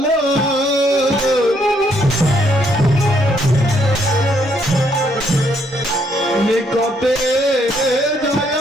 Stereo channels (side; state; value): both; normal; correlation 0.71